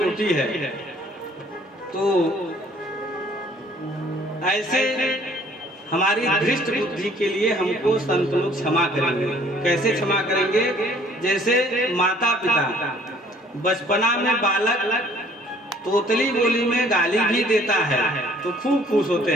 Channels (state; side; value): normal; both; correlation 0.58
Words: है। तो ऐसे हमारी दृष्ट बुद्धि के लिए हमको संत लोग क्षमा करेंगे। कैसे क्षमा करेंगे? जैसे माता पिता बचपना में बालक तोतली बोली में गाली भी देता है तो खूब खुश होते